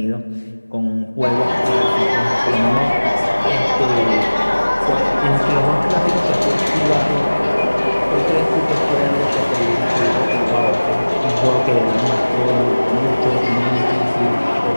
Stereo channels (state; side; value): inverted; both; correlation -1.00